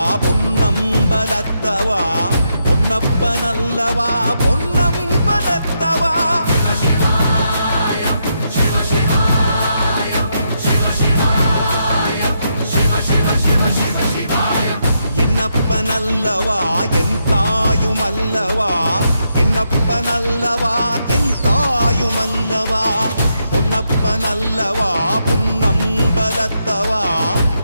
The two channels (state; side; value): inverted; both; correlation -0.80